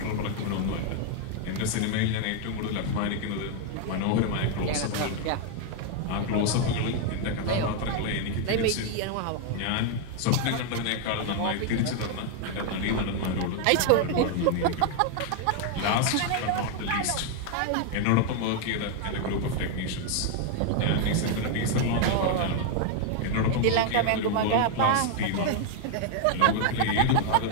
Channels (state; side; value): different; both; correlation 0.00